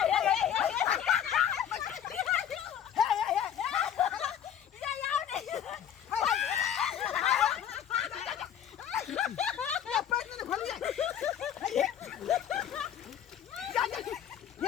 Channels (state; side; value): quieter; right; 9.5 dB